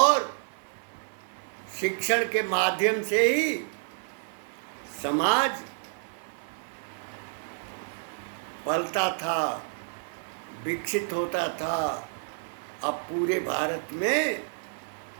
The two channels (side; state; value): left; silent; 58 dB below the other